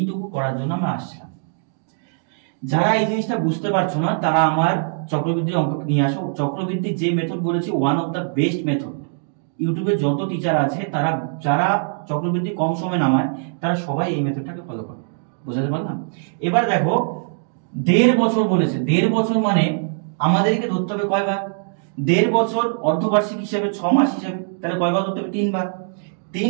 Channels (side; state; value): left; silent; digital silence